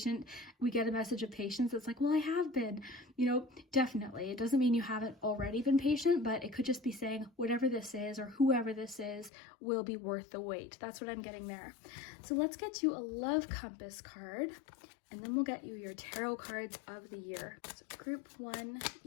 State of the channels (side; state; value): right; drops out; at 9.3 s